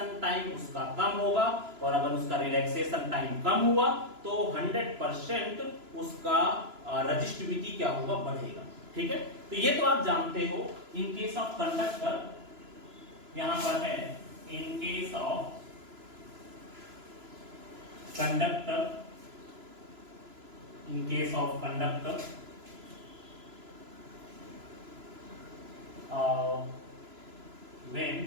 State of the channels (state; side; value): late; left; 3.0 ms